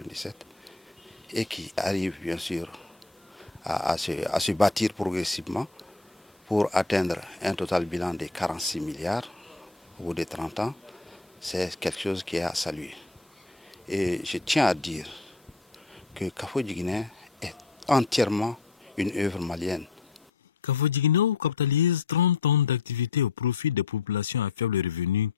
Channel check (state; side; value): quieter; right; 3.9 dB